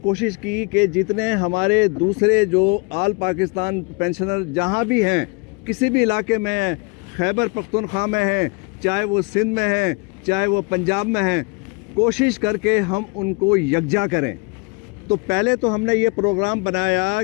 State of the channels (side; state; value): right; quieter; 31.2 dB